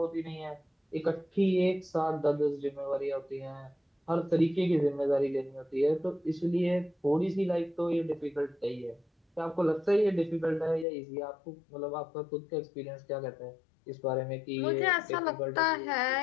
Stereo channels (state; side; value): drops out; right; at 10.9 s